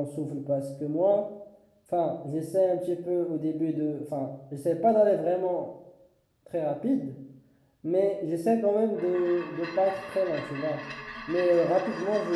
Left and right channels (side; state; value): both; identical; correlation 1.00